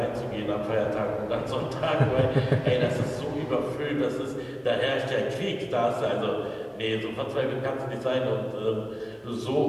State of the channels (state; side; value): identical; both; correlation 1.00